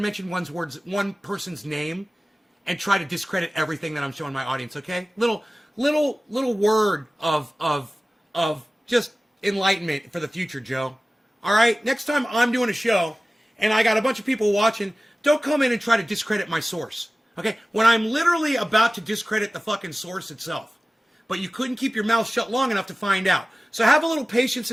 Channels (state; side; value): normal; both; correlation 0.97